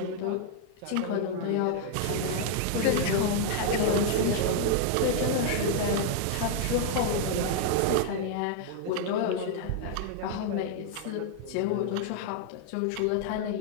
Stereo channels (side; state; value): both; different; correlation 0.00